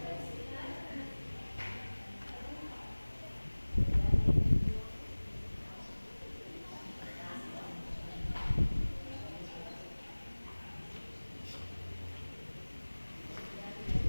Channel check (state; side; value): inverted; both; correlation -1.00